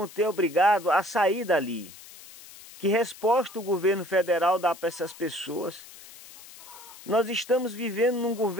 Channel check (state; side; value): noise; left; hiss, 19 dB below the sound